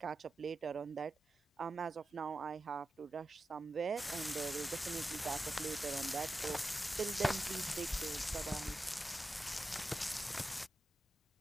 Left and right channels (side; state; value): both; normal; correlation 0.92